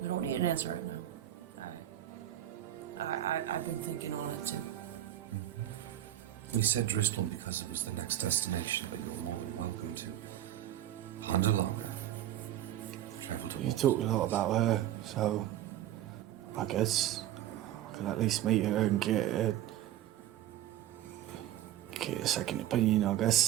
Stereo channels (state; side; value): quieter; left; 12.6 dB